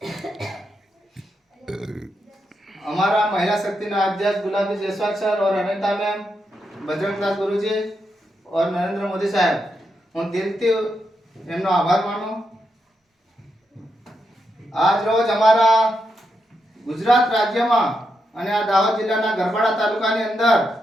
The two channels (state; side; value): normal; both; correlation 0.83